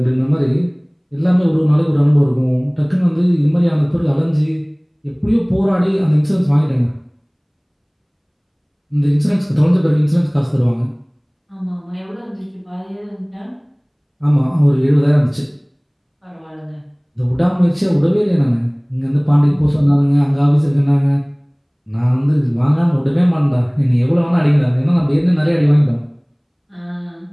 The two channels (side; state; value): both; identical; correlation 1.00